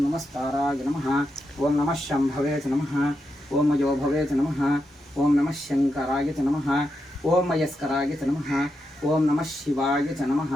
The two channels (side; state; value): both; normal; correlation 0.85